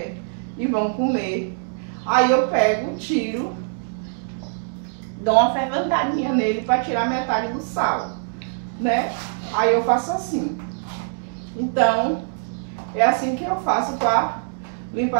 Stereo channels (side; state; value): left; silent; digital silence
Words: e vão comer, aí eu pego, tiro, dou uma ferventadinha nele para tirar metade do sal, né? Aí eu faço assim. Então, é assim que eu faço para